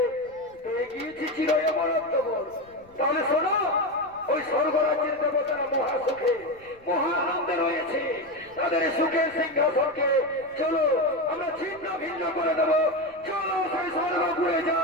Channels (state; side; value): noise; left; rumble, 28 dB below the sound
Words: পেয়ে গিয়েছি চির অমরত্ব বল। তাহলে শোনো, ওই স্বর্গরাজ্যের দেবতারা মহা সুখে মহা আনন্দে রয়েছে। তাদের সুখের সিংহাসনকে চলো আমরা ছিন্ন ভিন্ন করে দেবো। চলো সেই স্বর্গপুরে যা।